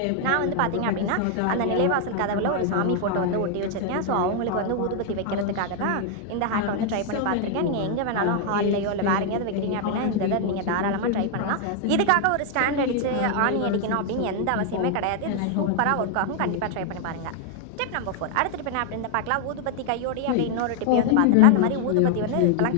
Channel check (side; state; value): both; different; correlation 0.00